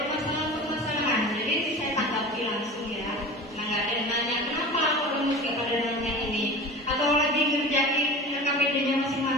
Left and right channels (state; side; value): normal; both; correlation 0.35